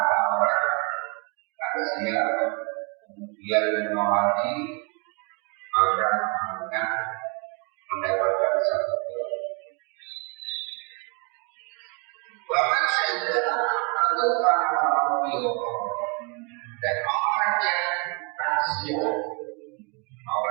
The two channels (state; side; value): quieter; left; 34.6 dB